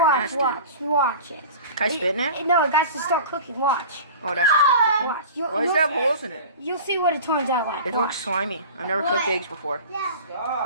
It's nasty. watch it. Can I spit in it? No, it got to start cooking. Watch. Oh, that's just cooking. Watch. Why does it have holes in it? You'll see what it turns out like. It looks slimy. I've never cooked eggs before.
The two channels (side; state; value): both; inverted; correlation -0.38